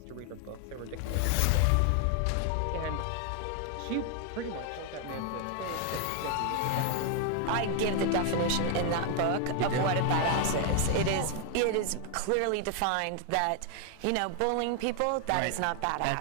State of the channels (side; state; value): both; different; correlation 0.00